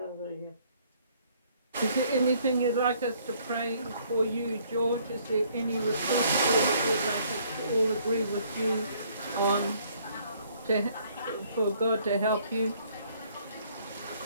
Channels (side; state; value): both; inverted; correlation -0.63